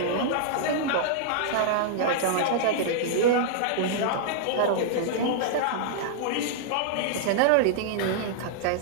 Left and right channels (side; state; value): both; different; correlation -0.01